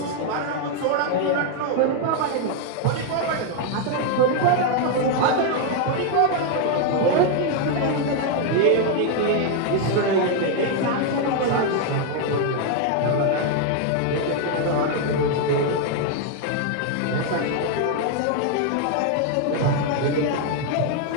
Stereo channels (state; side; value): different; both; correlation 0.01